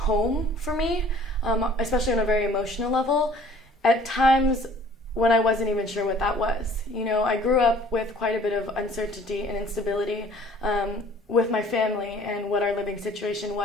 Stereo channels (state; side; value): normal; both; correlation 0.52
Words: for me, especially on a very emotional level. At times when I wasn't even sure what that was. You know, I grew up with quite a bit of uncertainty and instability with my family and what our living situation